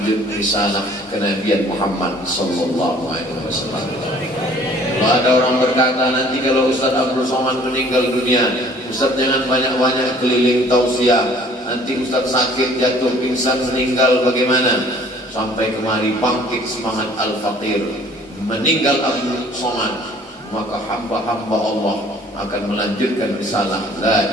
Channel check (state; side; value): normal; both; correlation 0.54